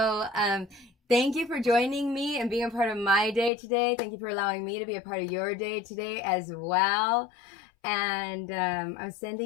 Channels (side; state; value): right; drops out; at 3.5 s